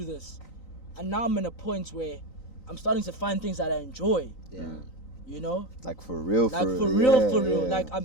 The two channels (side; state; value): right; late; 3.9 ms